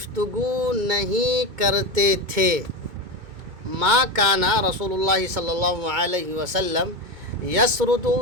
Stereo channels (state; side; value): late; left; 2.2 ms